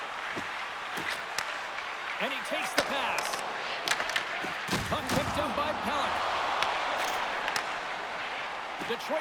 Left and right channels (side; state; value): both; identical; correlation 1.00